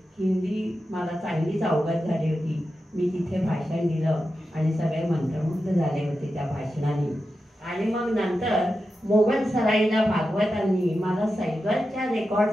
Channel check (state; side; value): normal; both; correlation 0.90